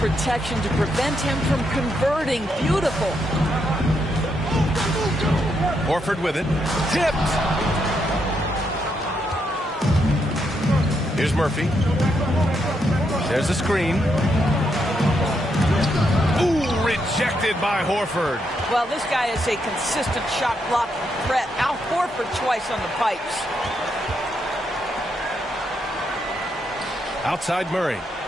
to prevent him from converting. Beautiful. Horford with it. Tipped. Here's Murphy. There's a screen. Ooh, rejected by Horford. Well, this guy is a consistent shot blocking threat. Now Horford twice on the pipes. Outside Murray.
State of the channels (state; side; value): normal; both; correlation 0.79